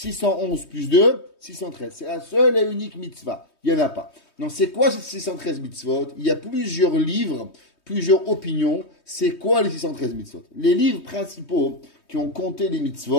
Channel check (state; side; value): late; right; 3.2 ms